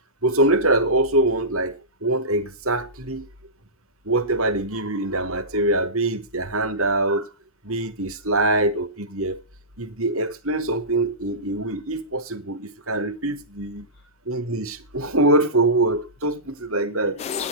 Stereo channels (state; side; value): normal; both; correlation -0.20